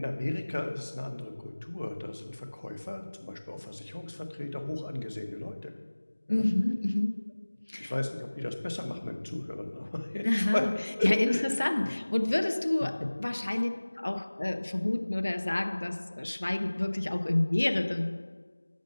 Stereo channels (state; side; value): inverted; both; correlation -1.00